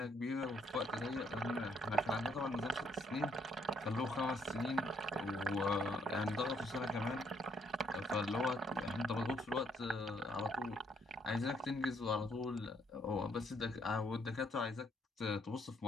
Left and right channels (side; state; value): both; normal; correlation 0.70